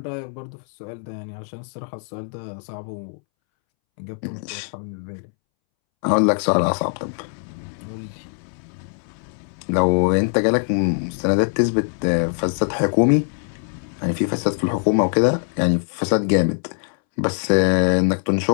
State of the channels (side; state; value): right; silent; 64 dB below the other